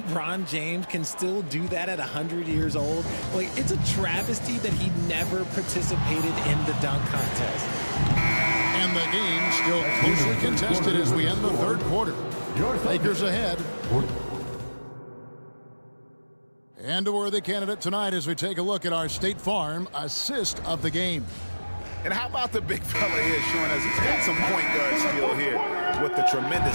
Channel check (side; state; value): both; inverted; correlation -1.00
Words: James can still do that at 100 years old, like, it's a travesty that he never participated in the dunk contest. And the game still closely contested as we end the third quarter. Lakers ahead. And a worthy candidate tonight as we take a look at our State Farm assist of the game. And how about the big fella here showing us he's got some point guard skill here with the